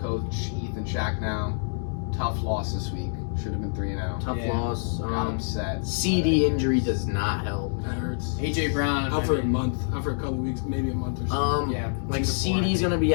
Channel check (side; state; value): right; silent; digital silence